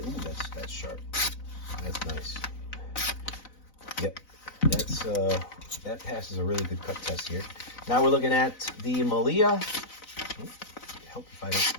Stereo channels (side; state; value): right; late; 4.0 ms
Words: Ooh, that's sharp. That's nice. Yep, that passes a really good cut test here. Now we're looking at the Maileah. Help if I don't